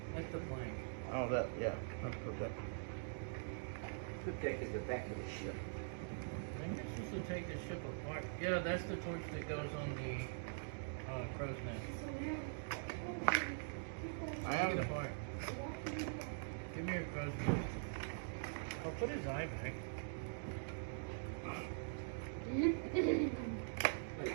That's the plank. Oh, that's the poop deck. The deck is the back of the ship. Maybe it's supposed to take the ship apart. Yeah, that's the torch that goes on the crow's nest. I Take it am. apart. Give me your crow's nest. Oh, put his eye back. Wait,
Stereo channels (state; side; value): silent; left; digital silence